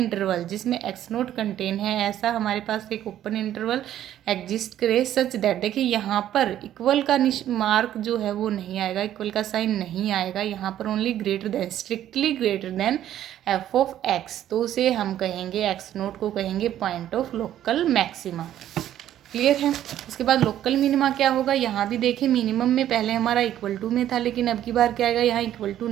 जिसमें एक्स नोट कंटेन है, ऐसा हमारे पास एक ओपन इंटरवल एग्जिस्ट करे सच दैट, देखिए यहाँ पर इक्वल का मार्क जो है वो नहीं आएगा, इक्वल का साइन नहीं आएगा, यहाँ पर only greater than, strictly greater than F of x, तो उसे हम कहेंगे, एक्स नोट को कहेंगे point of local maxima. Clear है। उसके बाद लोकल मिनिमा क्या होगा, यहाँ भी देखिए मिनिमम में पहले हमारा इक्वल टू में था, लेकिन अब की बार क्या आएगा, यहाँ इक्वल टू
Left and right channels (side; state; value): left; quieter; 11.7 dB